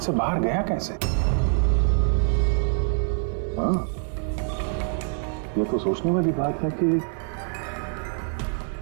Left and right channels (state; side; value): silent; left; 57 dB below the other